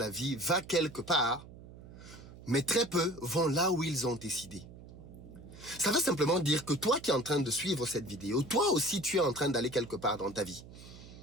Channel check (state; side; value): noise; right; hum, 17 dB below the sound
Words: vie va quelque part, mais très peu vont là où ils ont décidé. Ça veut simplement dire que toi qui es en train de suivre cette vidéo, toi aussi tu es en train d'aller quelque part dans ta vie.